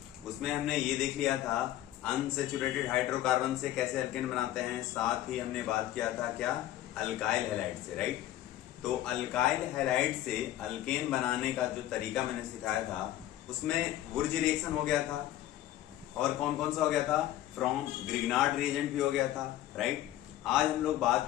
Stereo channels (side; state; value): right; quieter; 13.7 dB